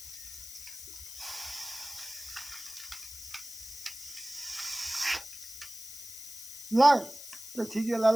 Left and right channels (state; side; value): noise; left; hiss, 11 dB below the sound